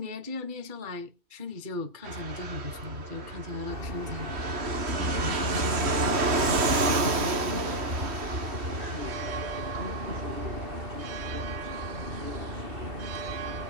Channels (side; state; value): left; late; 3.1 ms